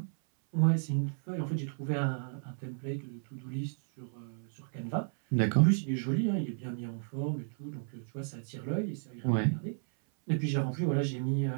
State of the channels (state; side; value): silent; left; 56 dB below the other